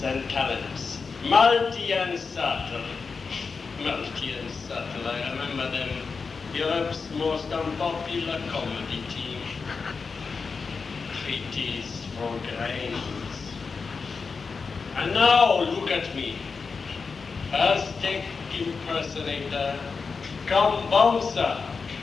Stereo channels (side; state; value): right; quieter; 4.9 dB